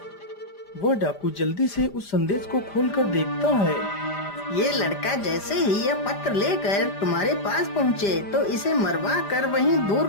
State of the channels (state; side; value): late; right; 5.0 ms